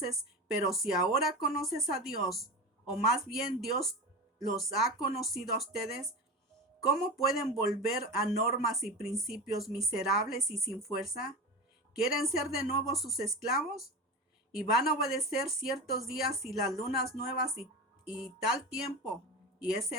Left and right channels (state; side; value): normal; both; correlation 0.26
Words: pero si ahora conoces a Dios, o más bien Dios los ha conocido a ustedes, ¿cómo pueden volver a normas y principios miserables y sin fuerza? ¿Quieren ser de nuevo sus esclavos? y van a obedecer ciertos días y las lunas nuevas y tal tiempo y ese